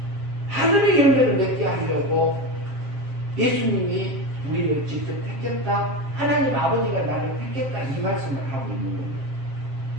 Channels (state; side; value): late; left; 7.4 ms